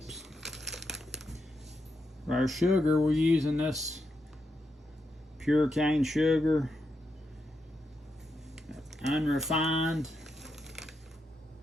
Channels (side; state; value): both; normal; correlation 0.84